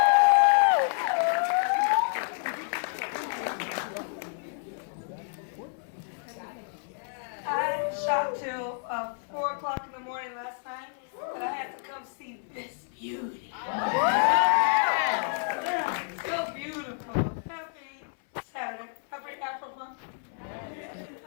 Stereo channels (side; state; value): right; silent; 58 dB below the other